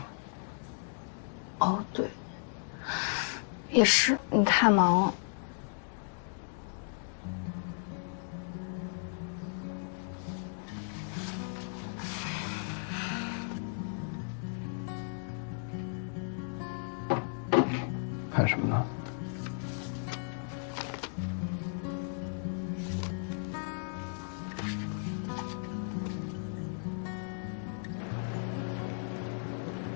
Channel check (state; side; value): silent; right; digital silence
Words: 哦，对，也是，你太忙了。看什么呢？